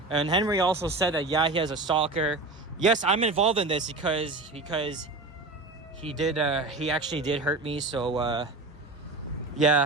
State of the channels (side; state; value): left; quieter; 3.2 dB